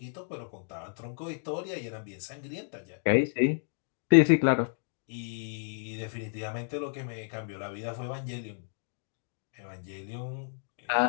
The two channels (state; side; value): silent; right; digital silence